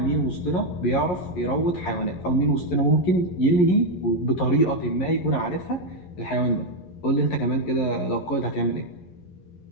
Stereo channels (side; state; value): right; late; 11 ms